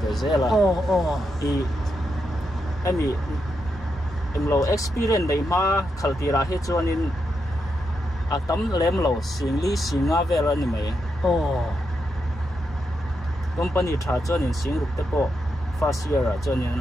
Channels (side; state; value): both; normal; correlation 0.84